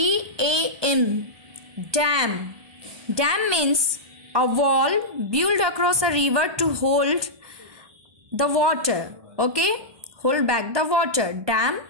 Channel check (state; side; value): late; left; 1.2 ms